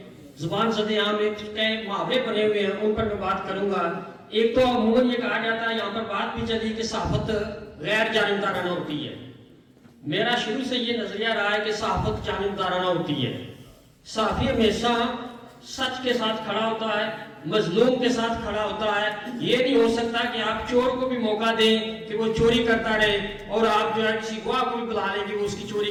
زبان زدے عام ایک محاورے بنے ہوئے ہیں، ان پر میں بات کروں گا۔ ایک تو عموماً یہ کہا جاتا ہے، یہاں پر بات بھی چلی کہ صحافت غیر جانبدارانہ ہوتی ہے۔ میرا شروع سے یہ نظریہ رہا ہے کہ صحافت جانبدارانہ ہوتی ہے۔ صحافی ہمیشہ سچ کے ساتھ کھڑا ہوتا ہے، مظلوم کے ساتھ کھڑا ہوتا ہے۔ یہ نہیں ہو سکتا کہ آپ چور کو بھی موقع دیں کہ وہ چوری کرتا رہے اور آپ جو ہے کسی گواہ کو بھی بلا لیں کہ وہ اس کی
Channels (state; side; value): identical; both; correlation 1.00